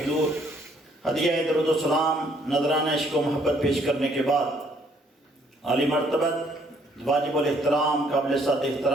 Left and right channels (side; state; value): both; normal; correlation 0.65